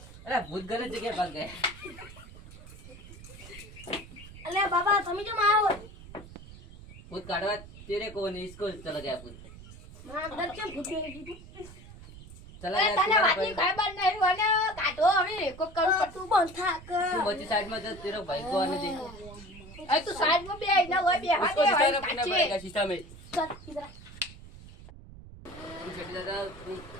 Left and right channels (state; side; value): noise; right; rumble, 17 dB below the sound